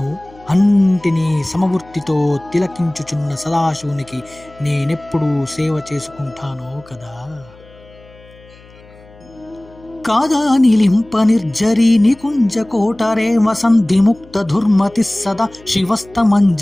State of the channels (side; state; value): left; noise; hum, 24 dB below the sound